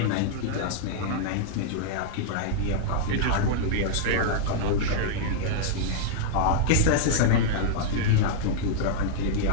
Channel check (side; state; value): both; different; correlation -0.02